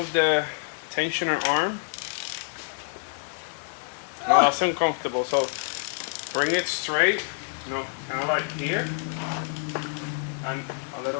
the tensioner arm. No, that's uncomfortable. So bring it straight, kind of like here. And a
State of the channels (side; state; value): right; silent; 60 dB below the other